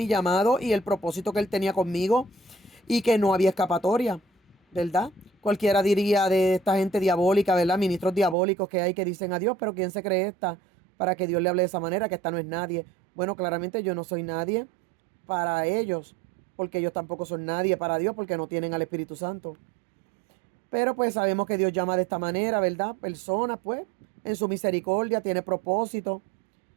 llamado y el propósito que Él tenía conmigo, y que no había escapatoria, ¿verdad? Cualquiera diría de esta gente diabólica, ¿verdad? Ministros diabólicos que hay que dicen a Dios, pero ¿quién se cree esta para que Dios le hable de esa manera? Que esta no es nadie. Bueno, claramente yo no soy nadie para ellos, porque ellos tampoco son nadie para Dios, porque no tienen al Espíritu Santo. Pero pues sabemos que Dios llama de esta manera, ¿verdad? Personas, pues, en su misericordia, tiene propósito,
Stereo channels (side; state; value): left; drops out; at 8.3 s